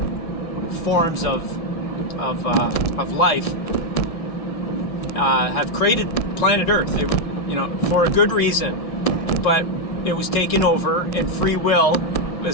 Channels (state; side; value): late; right; 1.7 ms